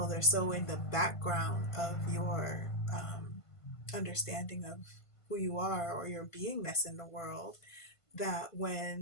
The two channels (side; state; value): right; late; 1.5 ms